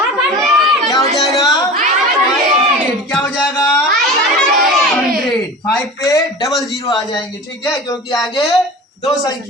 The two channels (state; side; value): normal; both; correlation 0.35